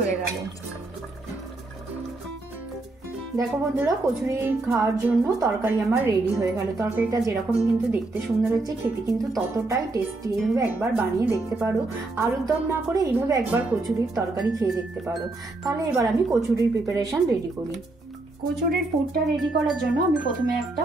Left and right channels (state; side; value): quieter; left; 3.0 dB